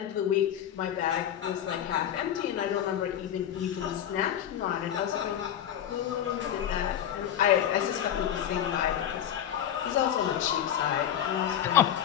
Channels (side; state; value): right; quieter; 10.3 dB